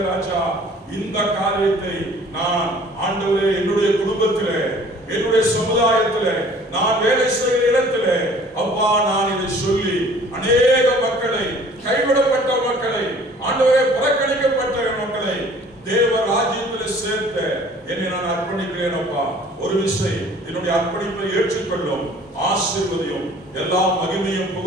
ராஜா. இந்த காரியத்தை நான் ஆண்டவரே என்னுடைய குடும்பத்திலே, என்னுடைய சமுதாயத்திலே, நான் வேலை செய்கிற இடத்திலே அப்பா நான் இதை சொல்லி அநேக மக்களை, கைவிடப்பட்ட மக்களை, ஆண்டவரே புறக்கணிக்கப்பட்ட மக்களை தேவ ராஜ்யத்தில் சேர்த்த என்னை நான் அர்ப்பணிக்கிறேன் அப்பா. ஒரு விஷயம், என்னுடைய அர்ப்பணிப்பை ஏற்றுக்கொள்ளும், ஆசீர்வதியும், எல்லா மகிமையும்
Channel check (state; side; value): normal; both; correlation 0.52